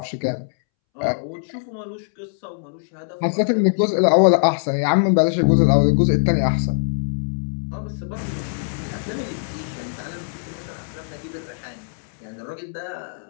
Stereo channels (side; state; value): right; silent; 64 dB below the other